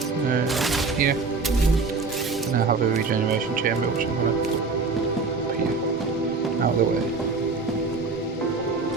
here, now have a regeneration chamber, which I'm going to put here, out of the way.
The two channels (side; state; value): left; quieter; 4.2 dB